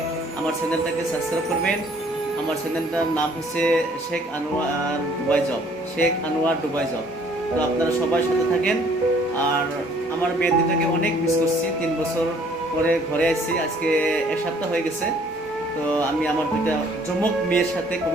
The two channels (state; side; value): normal; both; correlation 0.59